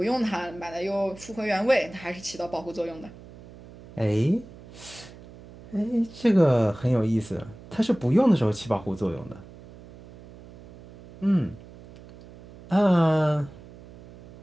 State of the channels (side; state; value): right; noise; hum, 19 dB below the sound